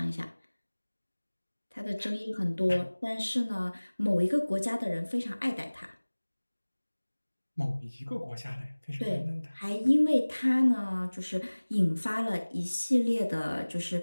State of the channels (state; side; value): inverted; both; correlation -1.00